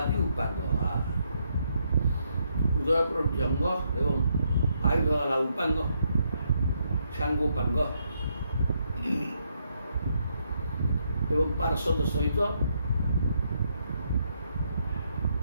ଉପାଙ୍ଗ। ହୃଦୟ ପ୍ରଭୃତି ଅଙ୍ଗ ଏବଂ ଆୟୁଧ ହେଲା ଉପାଙ୍ଗ, ସାଙ୍ଗୋପାଙ୍ଗ ଏବଂ ପାର୍ଶ୍ୱଦ ସହିତ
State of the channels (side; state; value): both; inverted; correlation -0.76